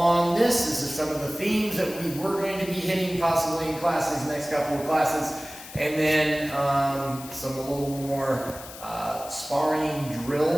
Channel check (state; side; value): noise; left; hiss, 15 dB below the sound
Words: this. This is some of the themes that we were going to be hitting possibly in classes, next couple of classes. And then some a little more sparring